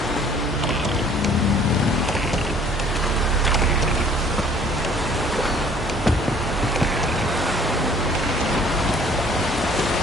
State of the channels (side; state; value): both; normal; correlation 0.55